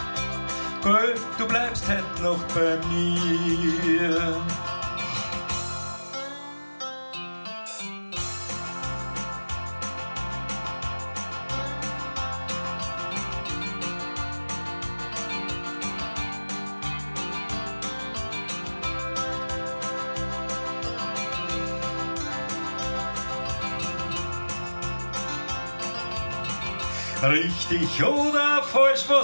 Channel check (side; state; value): both; inverted; correlation -1.00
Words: Gell, du bleibst heute noch bei mir. Richtig oder falsch,